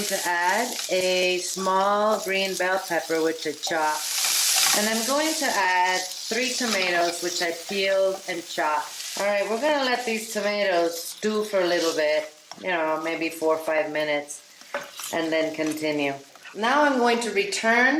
to add a small green bell pepper, which I chopped, and I'm going to add 3 tomatoes, which I peeled and chopped. All right, we're going to let these tomatoes stew for a little bit, maybe 4 or 5 minutes. And then continue. Now I'm going to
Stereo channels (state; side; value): identical; both; correlation 1.00